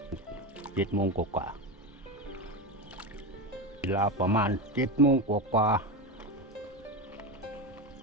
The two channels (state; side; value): normal; both; correlation 0.17